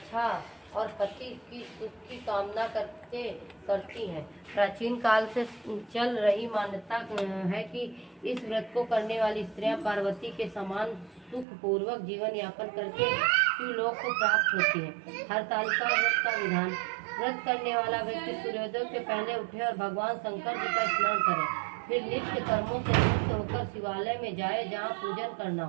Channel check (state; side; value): drops out; left; at 11.5 s